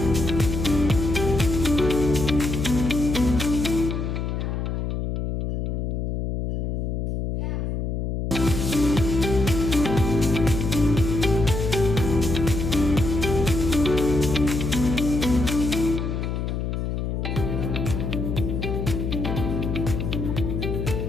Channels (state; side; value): noise; left; hum, 2 dB below the sound